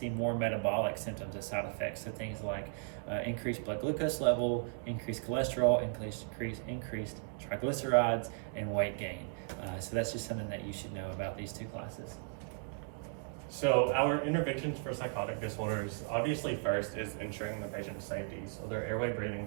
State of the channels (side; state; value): left; silent; 54 dB below the other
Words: more metabolic symptoms as side effects. So things like increased blood glucose level, increased cholesterol, increased triglycerides, and weight gain. So that's just something that you should know about these 2 classes. So our interventions for psychotic disorders, obviously first is ensuring the patient's safety, so their airway, breathing,